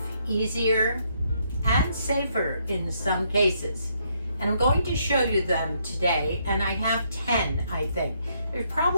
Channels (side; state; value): both; inverted; correlation -0.73